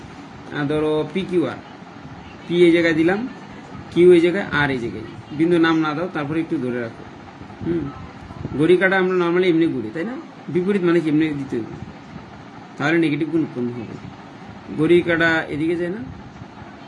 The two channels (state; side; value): identical; both; correlation 1.00